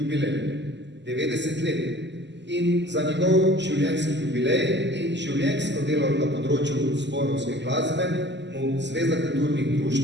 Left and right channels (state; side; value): late; left; 0.51 ms